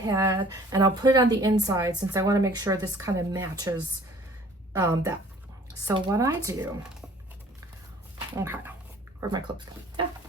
and I'll put it on the inside since I want to make sure this kind of matches that. So what I do, okay, where'd my clips go? Yeah,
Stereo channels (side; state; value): both; normal; correlation 0.53